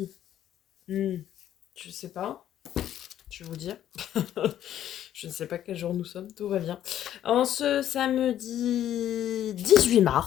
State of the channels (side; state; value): right; quieter; 11.3 dB